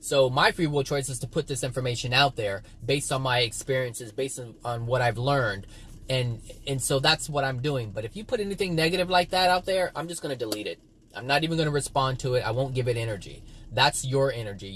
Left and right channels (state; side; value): identical; both; correlation 1.00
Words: my free will choice is to put this information out there based on my experiences, based on what I've learned. And so that's what I'm doing. But if you put anything negative like that out there, I'm just going to delete it. I'm not even going to respond to it. I won't give it energy. That's your energy.